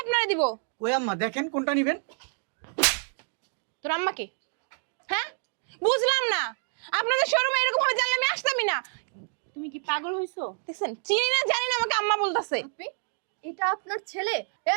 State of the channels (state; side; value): silent; left; 59 dB below the other